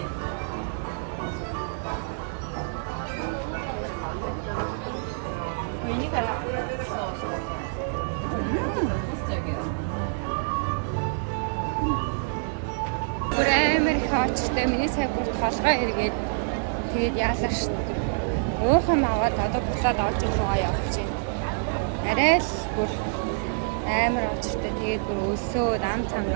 Бүр амар их очтой миний сая бүр толгой эргээд тэгээд яалаа шин. Уухан аваад одоо буцаад олж руугаа явчихъя. Арай л бүр амар очтой тэгээд бүр өлсөө рам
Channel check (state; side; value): silent; left; digital silence